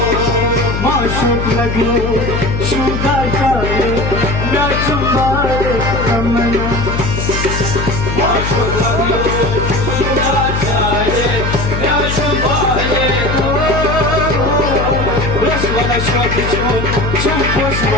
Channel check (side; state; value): left; noise; hum, 2 dB below the sound